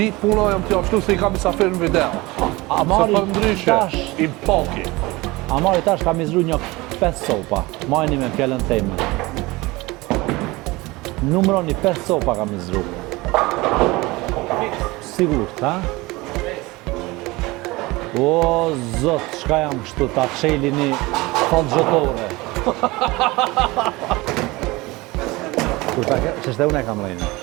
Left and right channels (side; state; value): left; quieter; 21.9 dB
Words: puna jam të jashtu se i kam i safir në video. Amari Se për ndryshe, tash, i paki. Amari tash ka mizru një 5 sopa. Majni me fjallën teme. Numroni 5 sopa ka mizru. Sigur, ha? O, zot, shka jam kështu, ta qeli një falgjotore. Kur ta ke, që shte unë e kam lejnë.